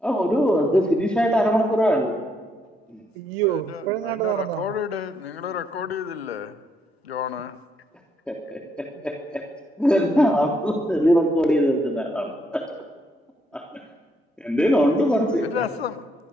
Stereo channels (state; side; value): normal; both; correlation 0.74